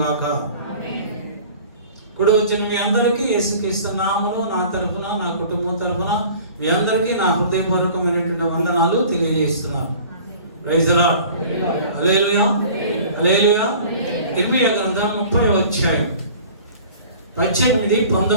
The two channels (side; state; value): both; inverted; correlation -0.46